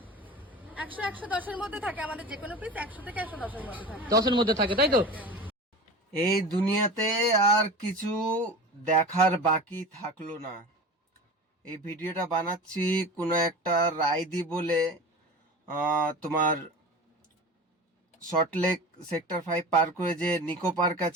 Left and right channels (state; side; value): normal; both; correlation 0.33